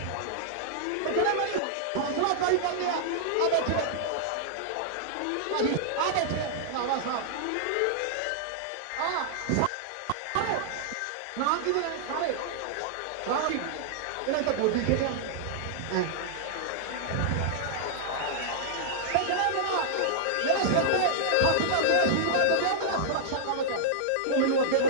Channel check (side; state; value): both; different; correlation -0.01